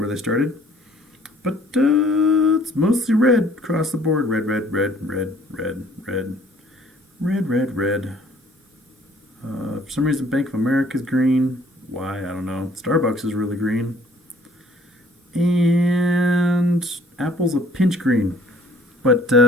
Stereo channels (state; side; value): normal; both; correlation 0.58